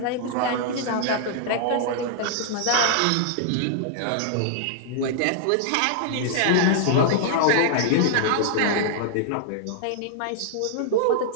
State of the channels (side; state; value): both; different; correlation -0.01